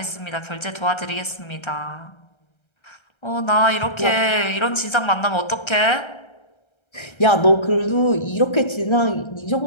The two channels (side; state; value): right; late; 1.3 ms